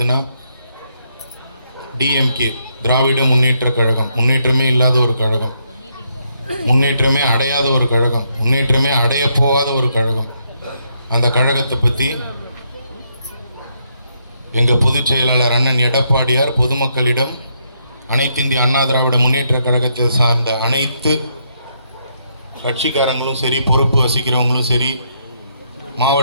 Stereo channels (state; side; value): inverted; both; correlation -0.76